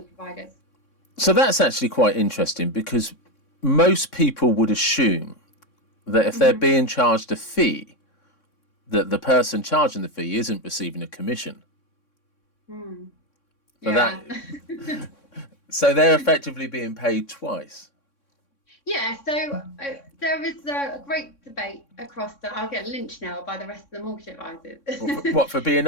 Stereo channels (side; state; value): right; late; 3.6 ms